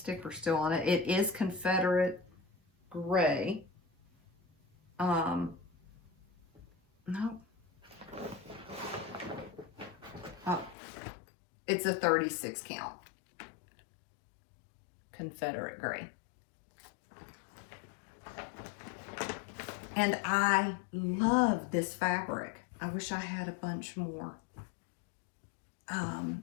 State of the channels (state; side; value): drops out; right; at 10.8 s